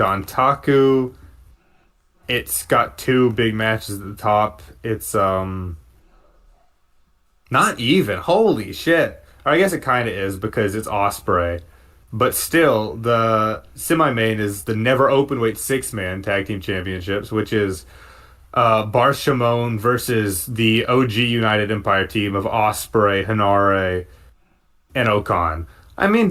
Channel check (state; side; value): identical; both; correlation 1.00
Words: it's got two big matches at the top. It's not even. Holy shit. Or I guess it kind of is because it's Ospreay. But still, the semi-main is the never openweight six-man tag team championships, which is Bar Shimon versus the OG United Empire team of Ospreay, Hanare, and Okan. I mean,